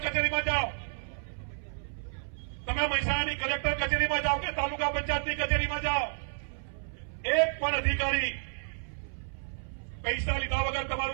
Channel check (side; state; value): left; silent; 57 dB below the other